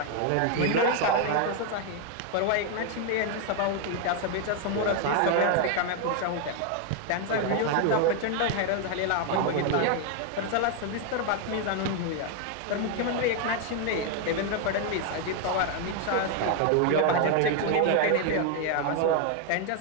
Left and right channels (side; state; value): both; different; correlation 0.01